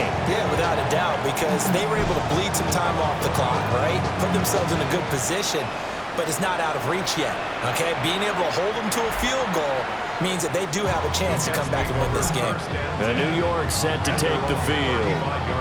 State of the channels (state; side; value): identical; both; correlation 1.00